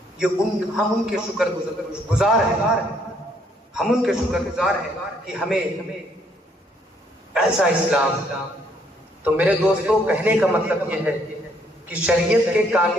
یہ ہم ان کے شکر گزار ہیں، ہم ان کے شکر گزار ہیں کہ ہمیں ایسا اسلام. تو میرے دوستوں کہنے کا مطلب یہ ہے کہ شریعت کے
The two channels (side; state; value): both; normal; correlation 0.68